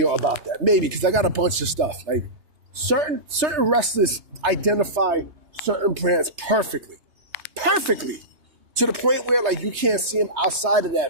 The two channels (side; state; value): left; late; 2.9 ms